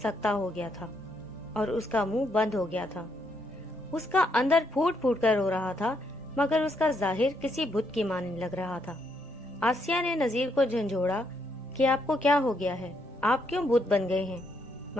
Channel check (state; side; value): normal; both; correlation 0.75